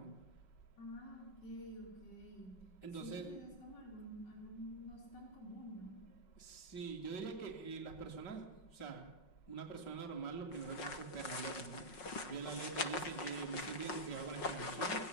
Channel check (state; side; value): late; right; 5.5 ms